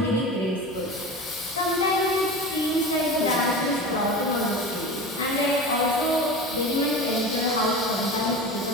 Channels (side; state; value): both; normal; correlation 0.31